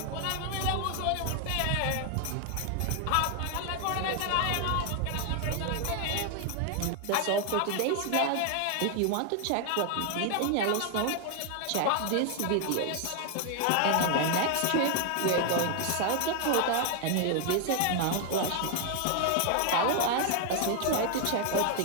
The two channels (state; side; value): different; both; correlation 0.00